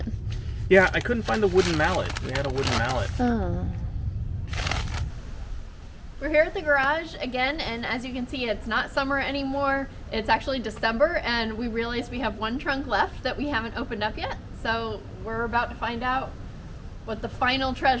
Yeah, I couldn't find the wooden mallet. We had a wooden mallet. Oh. We're here at the garage again, and as you can see, it's not summer anymore. It's actually December, and we realized we have one trunk left that we haven't opened up yet. So we're about to find out what the final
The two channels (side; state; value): both; identical; correlation 1.00